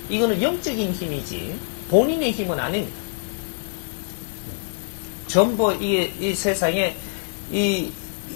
이거는 영적인 힘이지 본인의 힘은 아닙니다. 전부 이 세상에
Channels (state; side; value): silent; right; 62 dB below the other